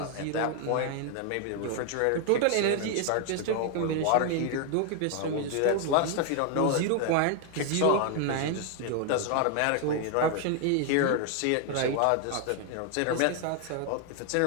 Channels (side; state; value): both; different; correlation 0.00